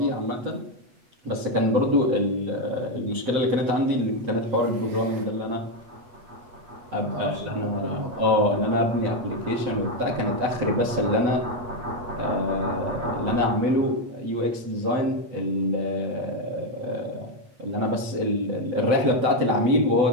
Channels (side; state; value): left; late; 8.3 ms